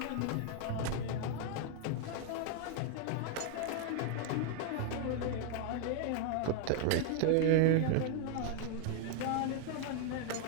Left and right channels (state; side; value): different; both; correlation 0.00